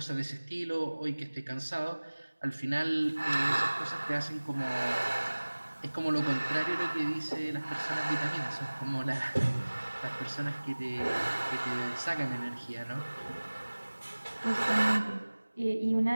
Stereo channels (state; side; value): inverted; both; correlation -1.00